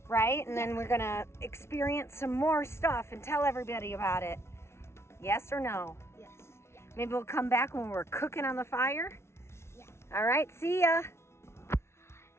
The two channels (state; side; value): late; right; 0.13 ms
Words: right? And then we're going to experience some more stuff and tell everybody about it. Yes or no? yes. Maybe we'll come back when we're cooking on the fire? Yeah. All right. See ya.